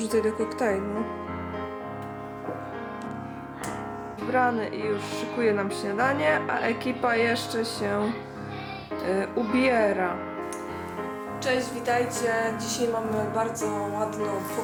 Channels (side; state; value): both; identical; correlation 1.00